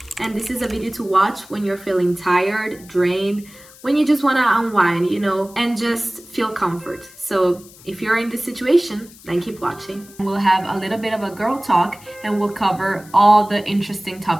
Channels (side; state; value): left; noise; hiss, 22 dB below the sound